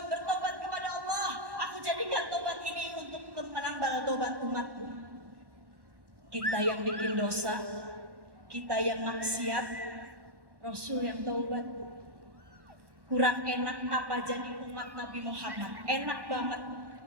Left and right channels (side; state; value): left; late; 1.1 ms